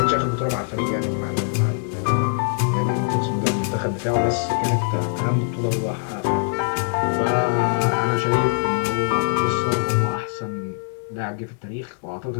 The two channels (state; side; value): silent; right; digital silence